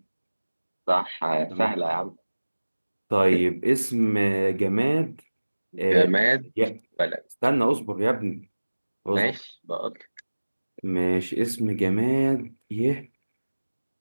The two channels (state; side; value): inverted; both; correlation -1.00